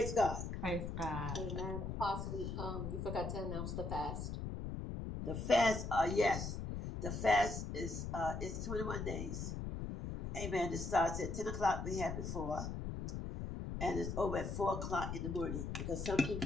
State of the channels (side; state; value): left; noise; rumble, 4 dB below the sound